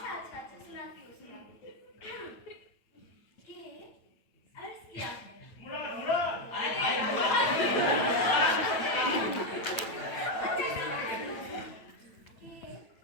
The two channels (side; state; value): right; late; 9.1 ms